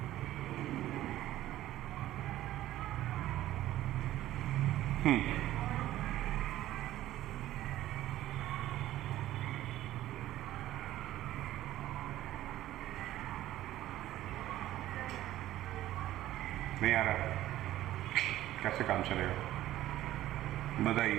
नहीं आ रहा? कैसे काम चलेगा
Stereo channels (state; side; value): quieter; left; 14.2 dB